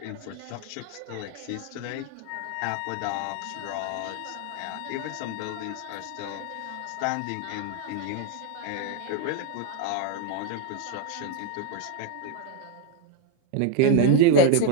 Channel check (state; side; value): different; both; correlation 0.01